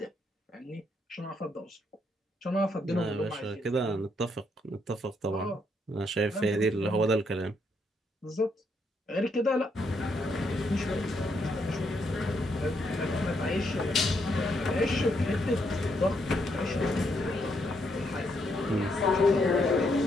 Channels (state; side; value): normal; both; correlation 0.76